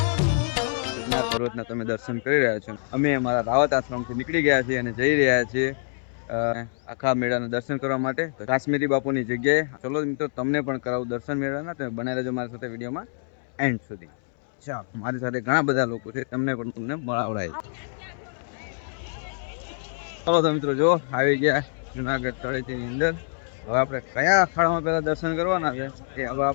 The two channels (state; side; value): silent; right; 61 dB below the other